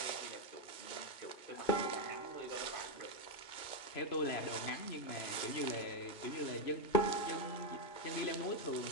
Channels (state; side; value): late; right; 2.2 ms